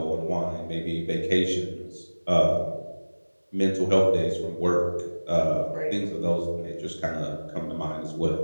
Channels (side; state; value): both; inverted; correlation -1.00